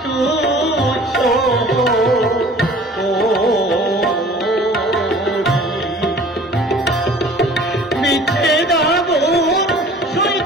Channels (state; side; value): normal; both; correlation 0.48